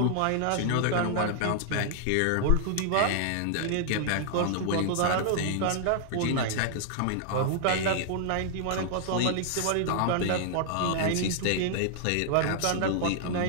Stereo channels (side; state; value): both; different; correlation 0.00